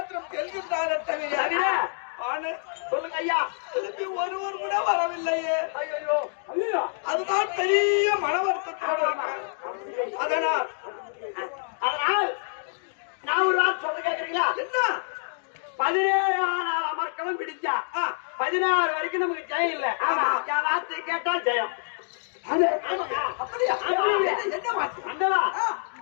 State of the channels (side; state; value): right; silent; digital silence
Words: செல்கின்றார் தவிர சொல்லுங்க ஐயா ஒருவர் கூட வரவில்லையே ஐயோ அதுதான் பெரிய மன வருத்தத்தோடு இருக்கேன். அதனால் நான் ஒரு நாள் சொல்ல கேக்குறீங்களா என்ன 17 அமர்க்களம் பிடிச்சா 16 வரைக்கும் நமக்கு ஜெயம் இல்ல யாராத்து கேட்டா ஜெயம் அப்படியா அந்தவா